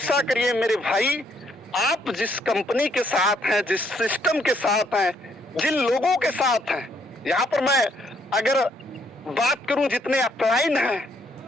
करिए मेरे भाई, आप जिस कंपनी के साथ हैं, जिस सिस्टम के साथ हैं, जिन लोगों के साथ हैं, यहाँ पर मैं अगर बात करूं, जितने अपलाइन हैं,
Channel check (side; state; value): both; normal; correlation 0.70